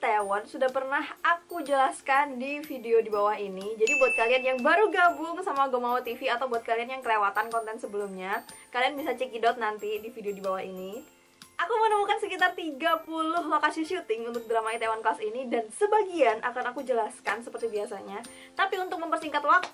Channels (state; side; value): identical; both; correlation 1.00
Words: sudah pernah aku jelaskan di video di bawah ini. Jadi buat kalian yang baru gabung sama Gomawo TV atau buat kalian yang kelewatan konten sebelumnya, kalian bisa cekidot nanti di video di bawah ini. Aku menemukan sekitar 30 lokasi syuting untuk drama Itaewon Class ini dan sebagian akan aku jelaskan seperti biasanya. Tapi untuk mempersingkat